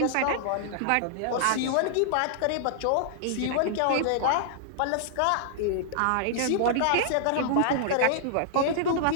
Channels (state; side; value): different; both; correlation -0.01